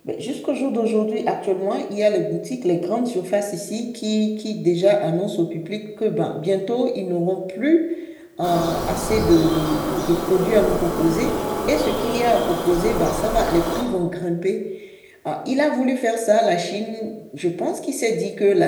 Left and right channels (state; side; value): identical; both; correlation 1.00